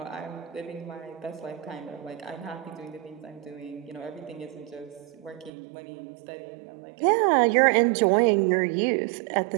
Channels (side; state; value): left; drops out; at 5.5 s